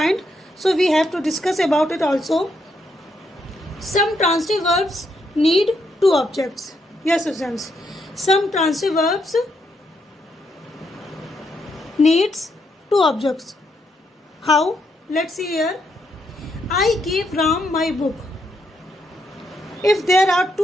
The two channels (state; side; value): normal; both; correlation 0.78